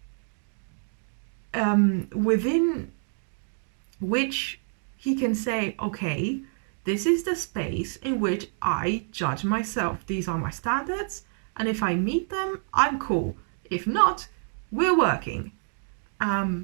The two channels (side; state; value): left; silent; 60 dB below the other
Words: within which he can say, okay, this is the space in which I judge myself. These are my standards, and if I meet them, I'm cool. If not, we're working.